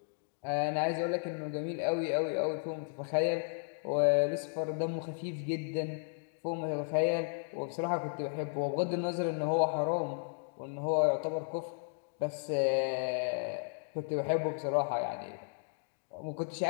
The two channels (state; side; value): silent; right; digital silence